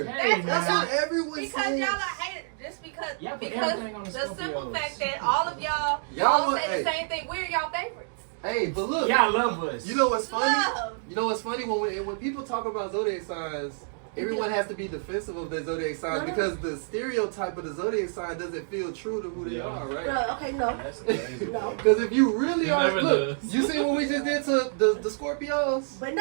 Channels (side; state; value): left; silent; digital silence